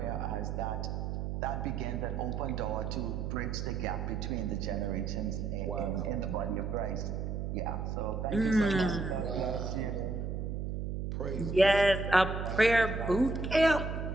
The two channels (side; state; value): right; noise; hum, 3 dB below the sound